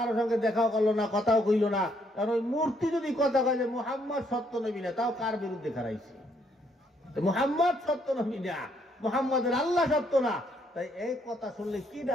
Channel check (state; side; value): normal; both; correlation 0.71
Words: সঙ্গে দেখাও করলো না, কথাও কইল না, কারণ ওই মূর্তি যদি কথা কয় যে মুহাম্মদ সত্য নবী না, তাও কার বিরুদ্ধে খারাইছে? মুহাম্মদ সত্য নবী না, মুহাম্মদের আল্লাহ সত্য না, তাই এই কথা শুনলে